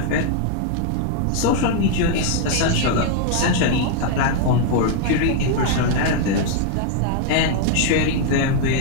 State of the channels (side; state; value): both; different; correlation 0.00